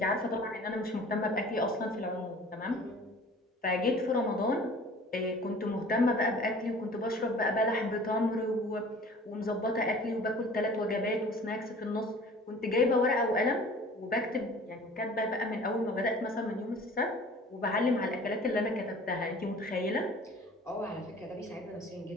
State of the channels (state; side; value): normal; both; correlation 0.46